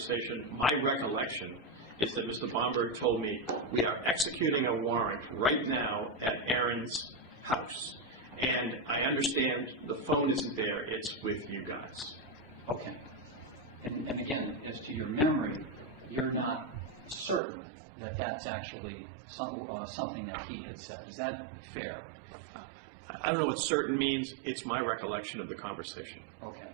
My recollection is that Mr. Bomberg told me, we are executing a warrant right now at Aaron's house. And I understand the phone isn't there, it's with you guys. Okay. And again, as to your memory, you're not certain that that's actually something that he had said. Is that fair? I don't know what certain means. It's my recollection of the conversation. Okay.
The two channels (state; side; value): drops out; left; at 17.4 s